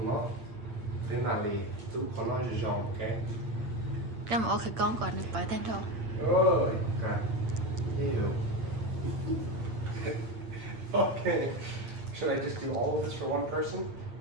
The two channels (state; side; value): late; left; 8.8 ms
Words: nó thế mà lý tú con nó giòn ok. Cái mà khử con còn được bởi tên thôi. Ôi, ok. Ew. Okay. Should I just do all of this for one person?